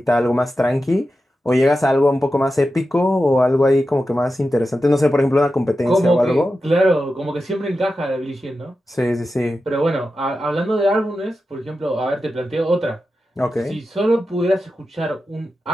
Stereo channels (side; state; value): both; normal; correlation 0.91